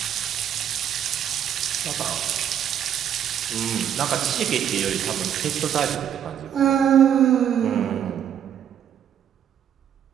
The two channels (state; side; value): quieter; left; 9.4 dB